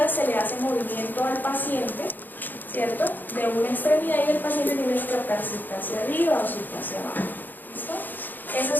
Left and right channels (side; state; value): right; late; 0.088 ms